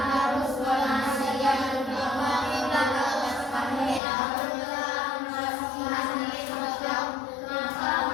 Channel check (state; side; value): drops out; right; at 4.0 s